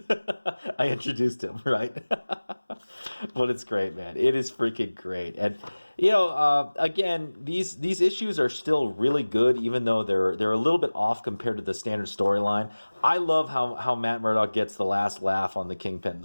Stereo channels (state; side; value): inverted; both; correlation -1.00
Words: I introduced him, right? But it's great, man. It is freaking great. And, again, these issues are still really good, even though they're a little bit off compared to the standard storyline. I love how Matt Murdock gets the last laugh on the Kingpin,